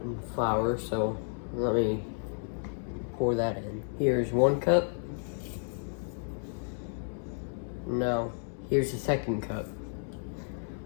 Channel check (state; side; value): silent; right; 57 dB below the other